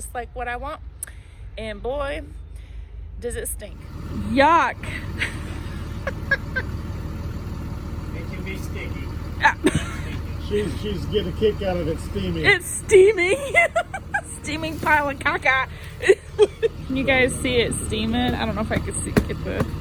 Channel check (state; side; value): identical; both; correlation 1.00